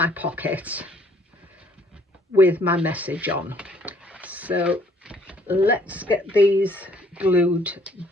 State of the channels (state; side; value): normal; both; correlation 0.62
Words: pocket with my message on. So let's get these glued